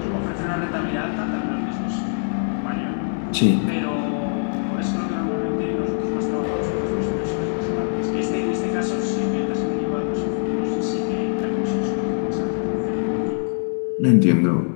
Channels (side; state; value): right; silent; digital silence